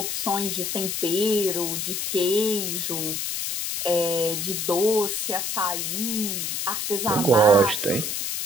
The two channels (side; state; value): left; noise; hiss, 2 dB below the sound